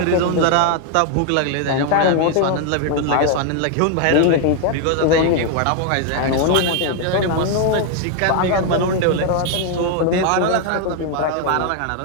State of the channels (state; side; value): different; both; correlation 0.00